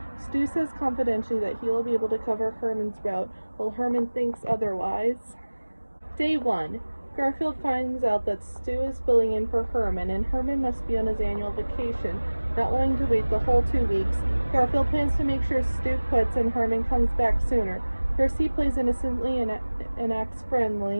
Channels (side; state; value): both; inverted; correlation -1.00